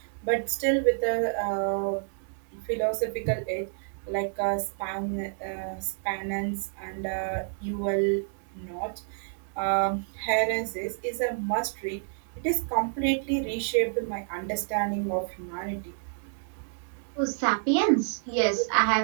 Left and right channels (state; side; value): silent; left; digital silence